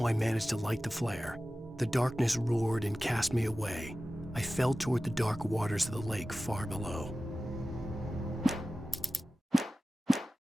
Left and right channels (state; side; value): normal; both; correlation 0.96